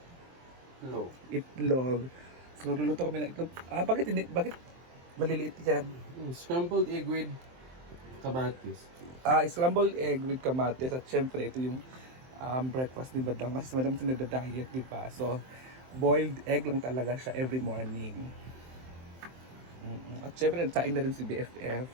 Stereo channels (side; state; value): left; late; 23 ms